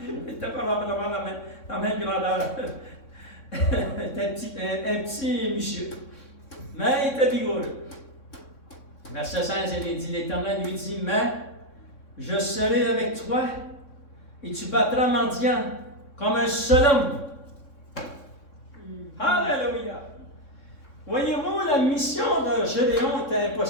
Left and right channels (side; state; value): right; late; 3.6 ms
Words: Il n'était pas vraiment la même grandeur. un petit monsieur. Mais il était vigoureux. Verset 16, il dit, l'Éternel lui dit, mais je serai avec toi et tu battras Madian comme un seul homme. Alléluia. Voyez-vous, la mission de Gédéon était